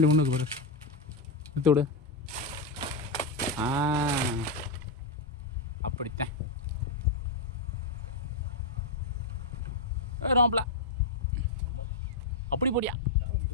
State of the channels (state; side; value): quieter; right; 3.2 dB